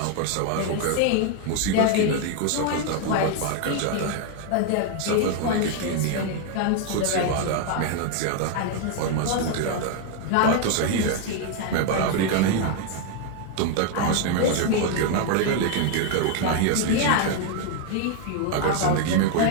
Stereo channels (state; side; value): different; both; correlation 0.00